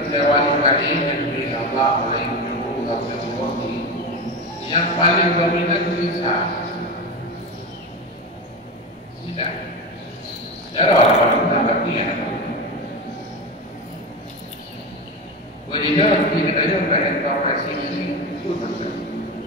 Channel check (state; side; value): normal; both; correlation 0.20